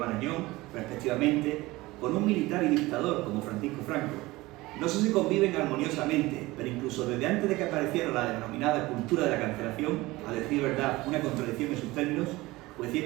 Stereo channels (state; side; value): quieter; left; 20.1 dB